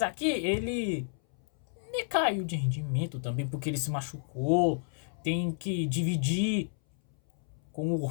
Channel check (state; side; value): silent; right; 57 dB below the other